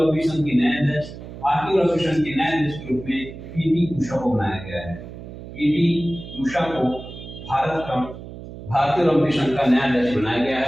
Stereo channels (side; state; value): right; noise; hum, 13 dB below the sound